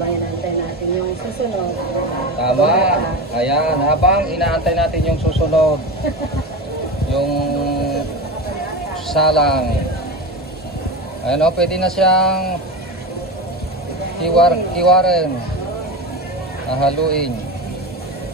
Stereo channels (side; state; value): both; normal; correlation 0.23